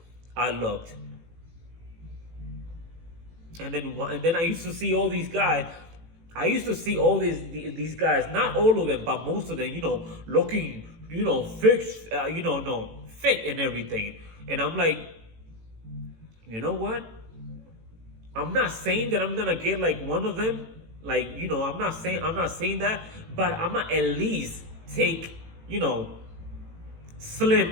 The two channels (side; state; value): left; late; 18 ms